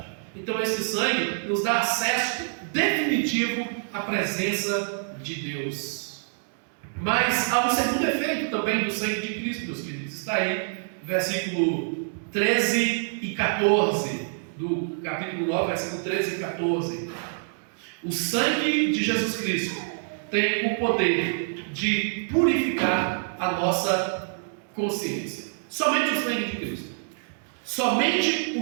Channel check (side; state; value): left; silent; digital silence